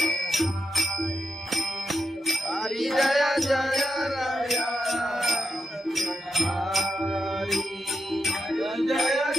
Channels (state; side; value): normal; both; correlation 0.86